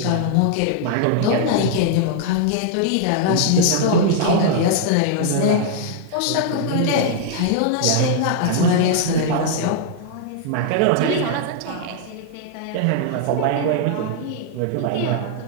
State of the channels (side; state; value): both; different; correlation -0.01